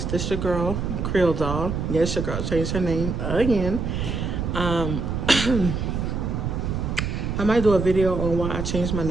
This your girl, Creole Doll. Yes, your girl changed her name again. I might do a video on why I changed my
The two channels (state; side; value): noise; right; rumble, 2 dB below the sound